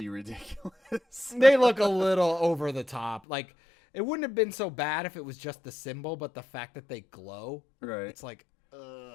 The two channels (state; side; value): drops out; right; at 3.2 s